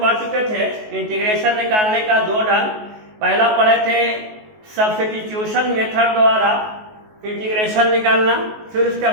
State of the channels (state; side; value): late; left; 19 ms